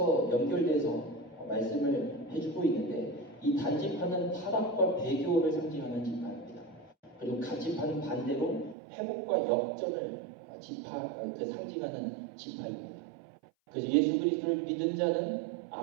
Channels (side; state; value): left; drops out; at 8.8 s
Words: 연결돼서 말씀을 해주고 있는데, 이 단지파는 타락과 배교를 상징하는 지파입니다. 그리고 갓지파는 반대로 회복과 역전을 상징하는 지파입니다. 그래서 예수 그리스도를 믿은 자는